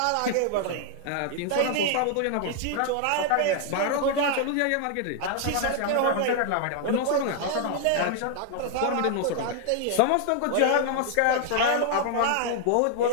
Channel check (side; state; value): both; different; correlation 0.00